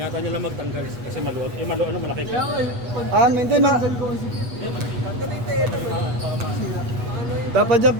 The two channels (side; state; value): left; late; 8.2 ms